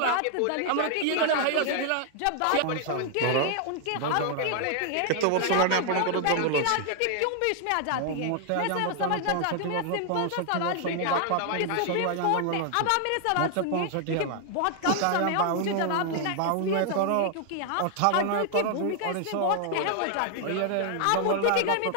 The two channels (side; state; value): both; different; correlation 0.00